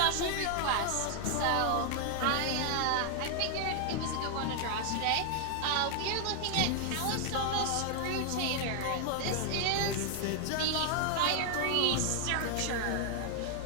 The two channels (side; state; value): both; different; correlation 0.00